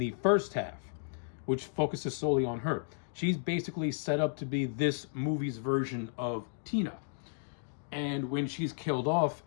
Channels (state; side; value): silent; right; digital silence